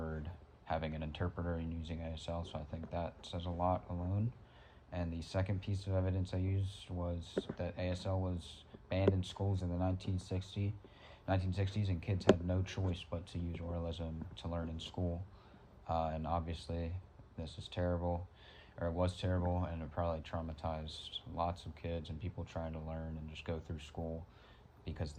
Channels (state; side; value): identical; both; correlation 1.00